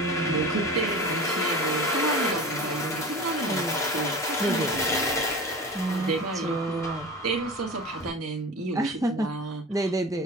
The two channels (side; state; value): both; normal; correlation 0.34